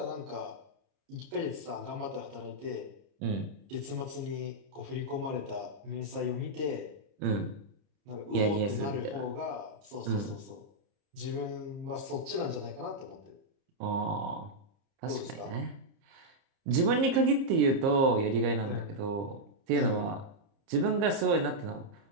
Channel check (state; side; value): late; left; 30 ms